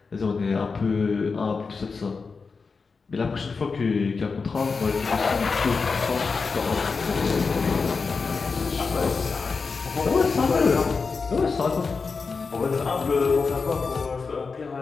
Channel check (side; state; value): right; quieter; 4.7 dB